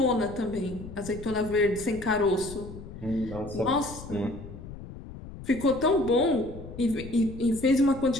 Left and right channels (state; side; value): noise; left; rumble, 13 dB below the sound